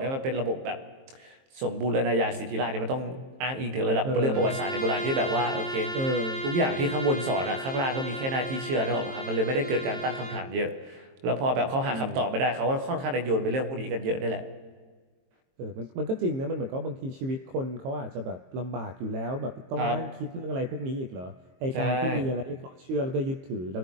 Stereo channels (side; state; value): left; late; 22 ms